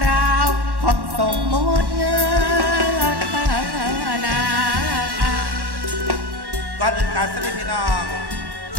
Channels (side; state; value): left; late; 1.1 ms